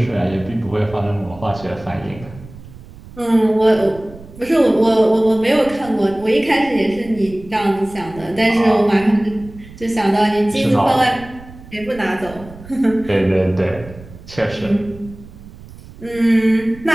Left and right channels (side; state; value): right; noise; rumble, 18 dB below the sound